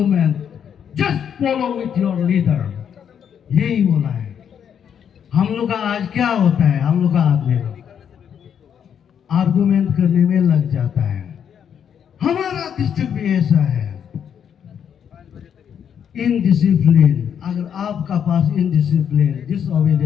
just follow with your leader. यही बोला है। हम लोग का आज क्या होता है? हम लोग का आदमी आर्गुमेंट करने में लग जाता है। हमारा डिस्ट्रिक्ट भी ऐसा है, इनडिसिप्लिन। अगर आपका पास इनडिसिप्लिन,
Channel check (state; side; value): quieter; right; 8.3 dB